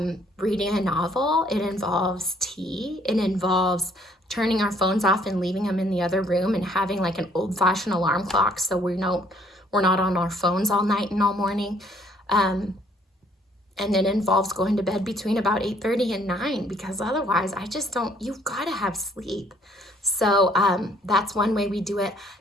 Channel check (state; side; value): normal; both; correlation 0.63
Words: reading a novel, it involves tea, it involves turning our phones off and leaving them in the other room and having like an old-fashioned alarm clock so we're not on our phones all night and all morning. And it involves going to bed between about 8:30 and 9, because otherwise you've got to have sleep. So that's one way we do it.